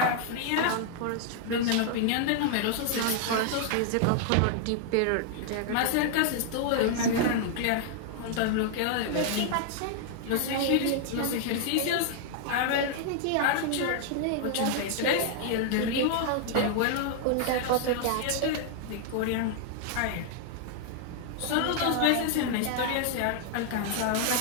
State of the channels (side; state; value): both; different; correlation 0.00